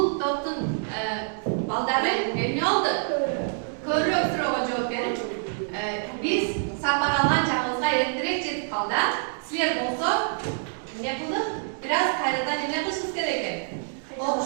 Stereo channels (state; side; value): silent; left; digital silence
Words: топтун балдары эмне болду? Көбүрөөк суроого жооп берип, биз сапар алган жагыбызга эртерээк жетип калды. Силер болсо эмне кылдык? Бир аз кайрадан эмне кылышыбыз керек экен?